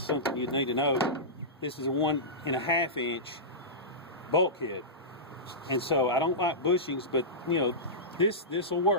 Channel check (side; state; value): both; normal; correlation -0.16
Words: you'd need to know. This is a 1 1/2-inch bulkhead, and so I don't like bushings, but you know, this will